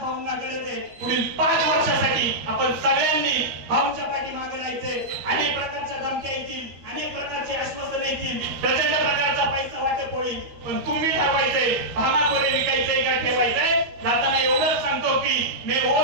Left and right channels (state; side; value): late; left; 13 ms